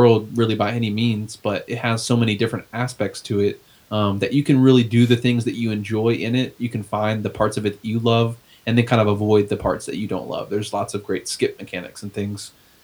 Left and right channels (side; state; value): both; identical; correlation 1.00